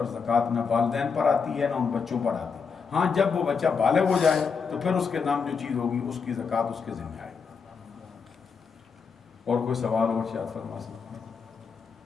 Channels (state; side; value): quieter; right; 5.6 dB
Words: زکوٰۃ نہ والدین پر آتی ہے نہ ان بچوں پر آتی ہے۔ ہاں جب وہ بچہ بالغ ہو جائے تو پھر اس کے نام جو چیز ہوگی اس کی زکوٰۃ اس کے ذمہ آئے گی۔ اور کوئی سوال اور شاید فرما سکتے ہیں؟